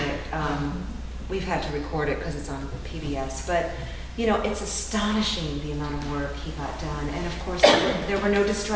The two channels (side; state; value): both; identical; correlation 1.00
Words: it. We've had to record it because it's on PBS, but it's astonishing the amount of work he got done. And of course, there were no